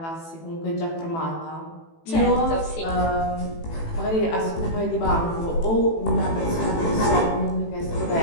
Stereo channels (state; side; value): late; right; 18 ms